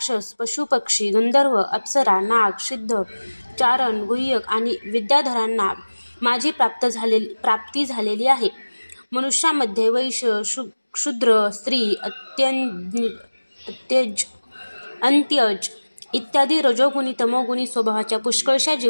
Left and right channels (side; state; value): both; inverted; correlation -1.00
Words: पशुपक्षी, गंधर्व, अप्सरा, नाग, सिद्ध, चारण, गुह्यक आणि विद्याधरांना माझी प्राप्ती झालेली आहे. मनुष्यामध्ये वैश्य, शूद्र, स्त्री, अंत्यज इत्यादी रजोगुणी, तमोगुणी स्वभावाच्या पुष्कळशा